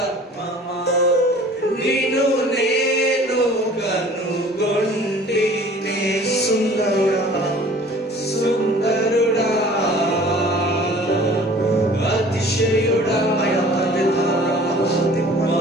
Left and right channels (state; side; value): normal; both; correlation 0.48